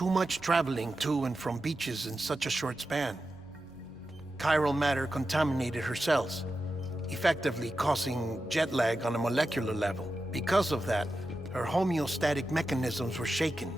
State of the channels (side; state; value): both; normal; correlation 0.91